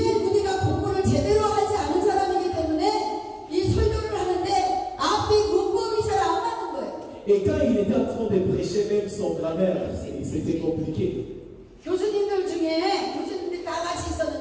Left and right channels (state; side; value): identical; both; correlation 1.00